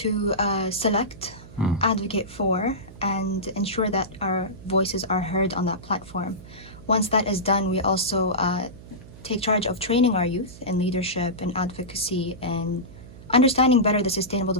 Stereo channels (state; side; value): noise; right; hum, 18 dB below the sound